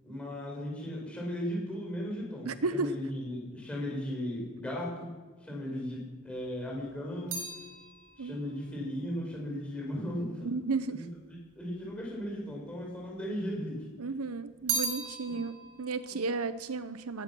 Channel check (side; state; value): both; normal; correlation 0.39